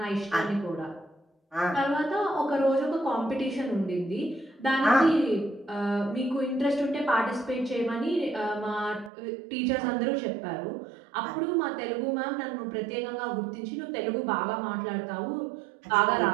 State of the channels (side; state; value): left; drops out; at 9.1 s